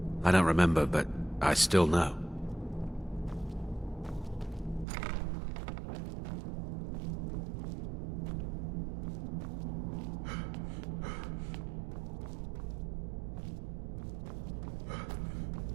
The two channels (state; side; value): drops out; left; at 4.9 s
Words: I don't remember, but I still know.